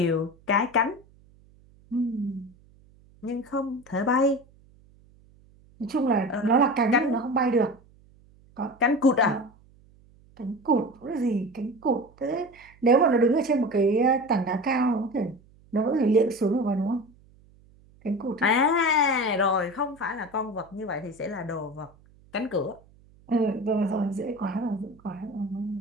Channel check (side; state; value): right; noise; hum, 28 dB below the sound